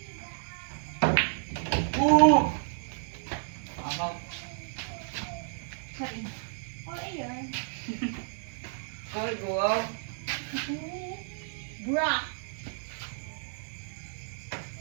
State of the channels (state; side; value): silent; left; digital silence